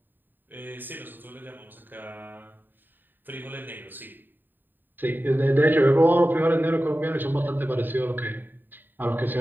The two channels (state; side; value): late; left; 0.092 ms